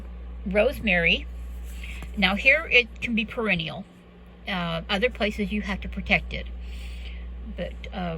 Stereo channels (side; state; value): both; identical; correlation 1.00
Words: Rosemary. Now here it can be perennial. Other places you have to protect it. But